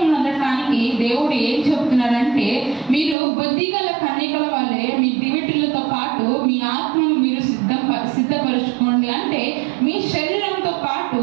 నొందటానికి దేవుడు ఏం చెప్తున్నాడంటే, మీరు బుద్ధిగల కన్యకల వల్లే మీ దివిటీలతో పాటు మీ ఆత్మను మీరు సిద్ధపరచుకోండి. అంటే మీ శరీరంతో పాటు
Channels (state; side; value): drops out; left; at 3.2 s